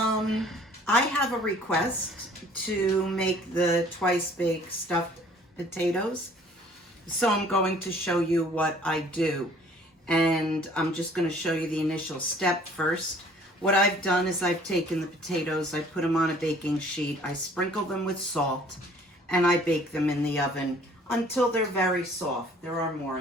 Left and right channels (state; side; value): normal; both; correlation 0.55